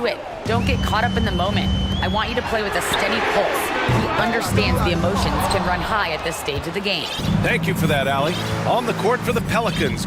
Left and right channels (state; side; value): identical; both; correlation 1.00